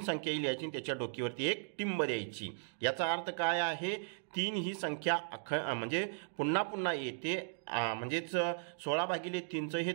संख्या लिहायची, त्याच्या डोकीवरती एक टिंब द्यायची। याचा अर्थ काय आहे, 3 ही संख्या म्हणजे पुन्हा पुन्हा येते, म्हणजेच 16/3चं हे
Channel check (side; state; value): left; silent; digital silence